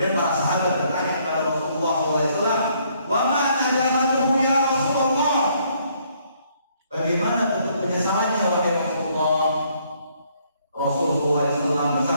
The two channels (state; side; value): inverted; both; correlation -0.67